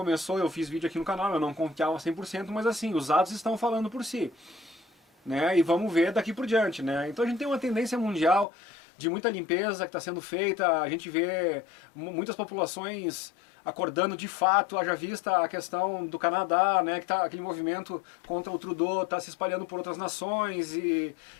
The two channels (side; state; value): right; drops out; at 8.5 s